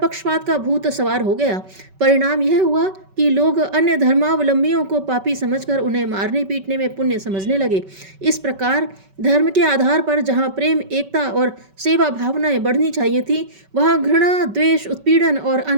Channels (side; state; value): left; late; 5.2 ms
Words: का भूत सवार हो गया। परिणाम यह हुआ कि लोग अन्य धर्मावलंबियों को पापी समझकर उन्हें मारने पीटने में पुण्य समझने लगे। इस प्रकार धर्म के आधार पर जहाँ प्रेम, एकता और सेवा भावनाएं बढ़नी चाहिए थी, वहाँ घृणा, द्वेष, उत्पीड़न और